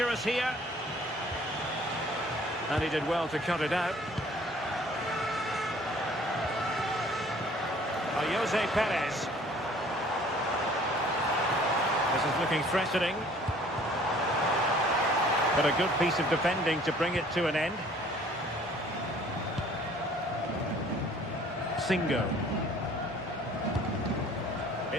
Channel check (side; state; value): both; normal; correlation 0.54